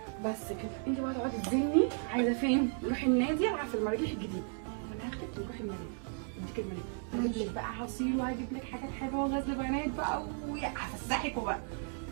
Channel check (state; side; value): silent; left; 55 dB below the other